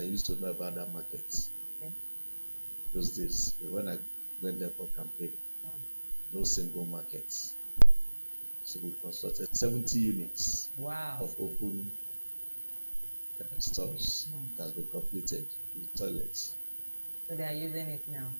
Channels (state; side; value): inverted; both; correlation -1.00